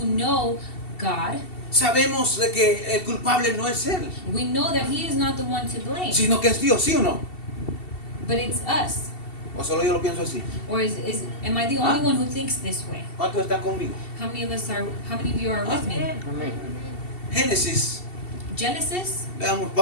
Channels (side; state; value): right; late; 2.7 ms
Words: know God, sabemos de que el culpable no es Él, we know that He is not the one to blame, sino que es Dios, ¿sí o no? but it's us. O solo yo lo pienso así. Or am I the only Ah. one who thinks this way? ¿Cuántos están conmigo? How many of you are with me? Amén. Génesis, Genesis.